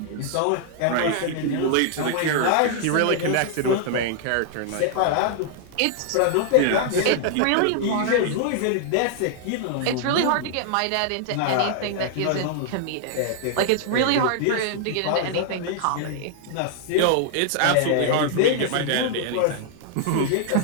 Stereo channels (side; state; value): both; different; correlation -0.01